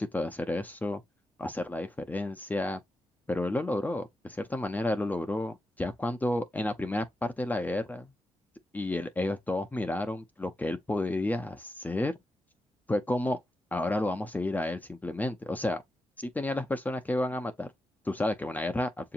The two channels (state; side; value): normal; both; correlation 0.89